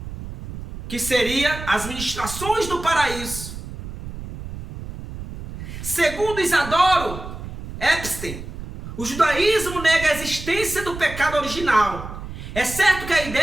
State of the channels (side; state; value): right; noise; rumble, 10 dB below the sound